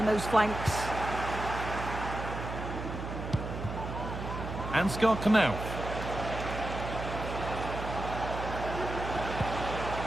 those flanks. Ansgar Knauf.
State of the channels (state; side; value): noise; right; hum, 6 dB below the sound